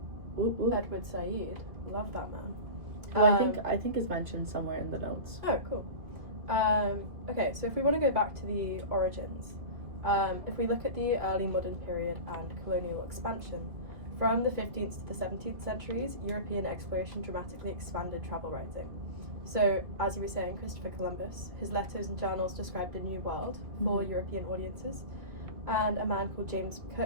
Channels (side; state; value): left; late; 2.6 ms